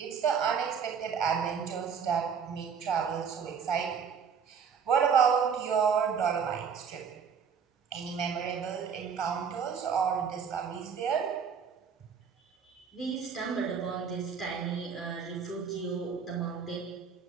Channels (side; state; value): left; quieter; 6.7 dB